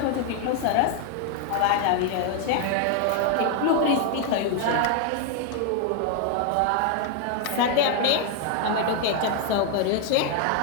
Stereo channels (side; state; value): both; different; correlation 0.00